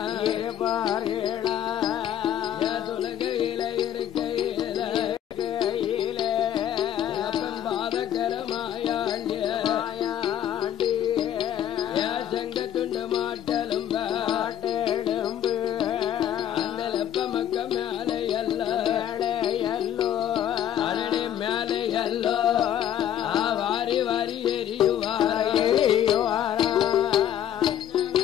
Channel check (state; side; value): quieter; right; 10.7 dB